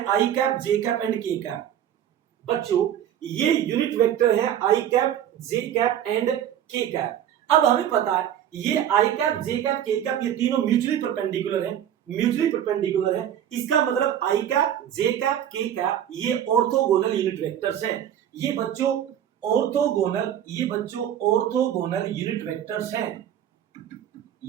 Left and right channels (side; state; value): left; quieter; 10.3 dB